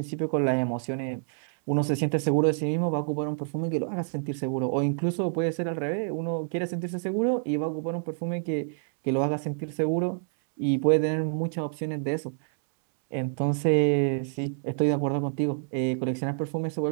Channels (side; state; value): left; silent; 60 dB below the other